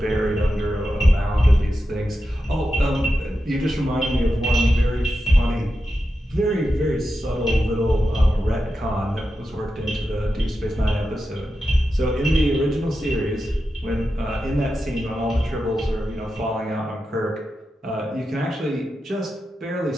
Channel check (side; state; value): both; normal; correlation 0.90